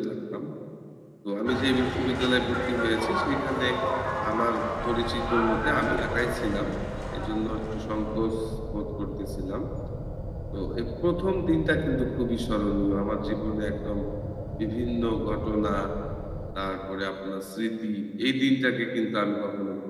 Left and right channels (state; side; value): identical; both; correlation 1.00